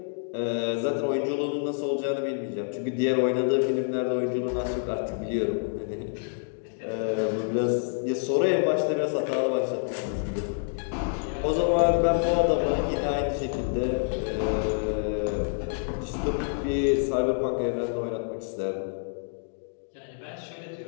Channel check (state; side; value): silent; right; digital silence